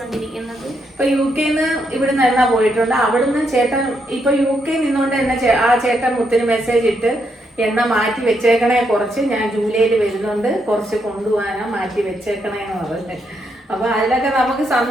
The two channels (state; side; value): normal; both; correlation 0.78